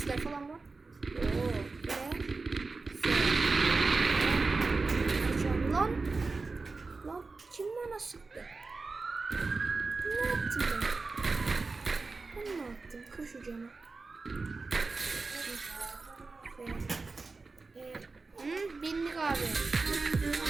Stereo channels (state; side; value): quieter; left; 3.9 dB